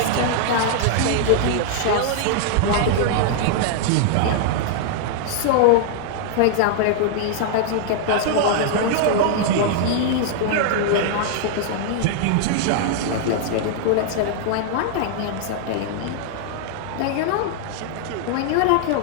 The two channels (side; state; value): both; different; correlation -0.01